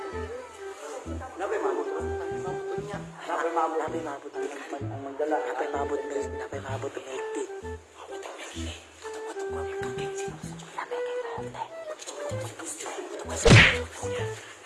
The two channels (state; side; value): identical; both; correlation 1.00